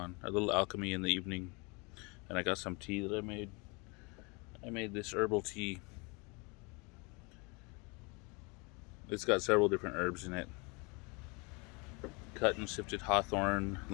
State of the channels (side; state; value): right; quieter; 29.9 dB